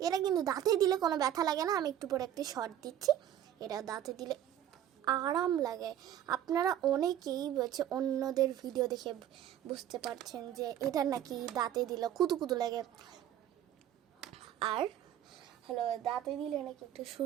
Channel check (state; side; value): quieter; left; 11.1 dB